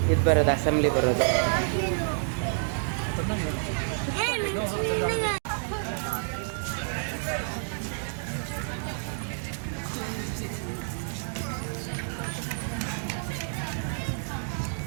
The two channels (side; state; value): left; silent; digital silence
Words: ಇದು ಬರೋದು, ಅಸೆಂಬ್ಲಿ ಬರೋದು.